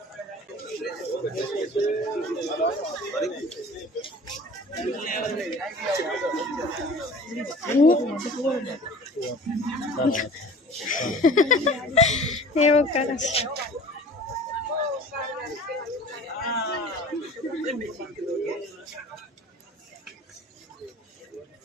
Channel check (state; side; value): normal; both; correlation 0.44